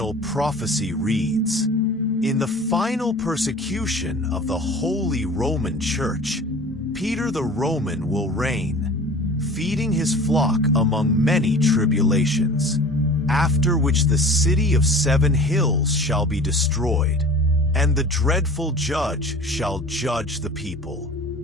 prophecy reads, in the final persecution of the Holy Roman Church, Peter the Roman will reign, feeding his flock among many tribulations, after which the city of 7 hills shall be destroyed, and the dreadful judge shall judge the people.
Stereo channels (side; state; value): both; normal; correlation 0.41